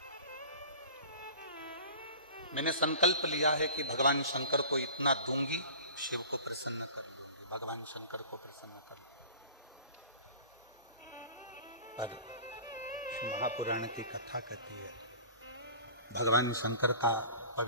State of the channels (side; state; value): both; inverted; correlation -0.41